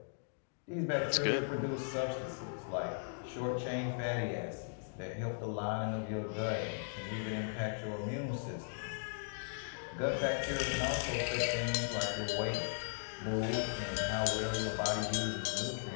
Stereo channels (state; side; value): silent; right; digital silence